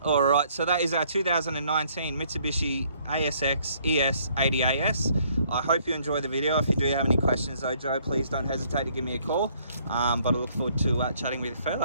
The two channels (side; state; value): both; inverted; correlation -0.65